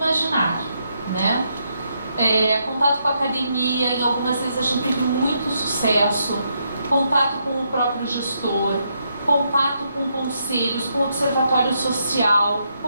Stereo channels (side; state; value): both; inverted; correlation -0.78